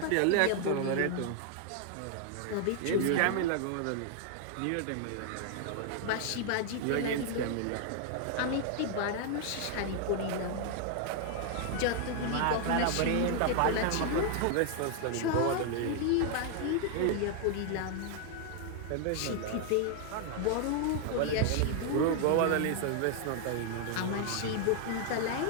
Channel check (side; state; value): both; different; correlation 0.00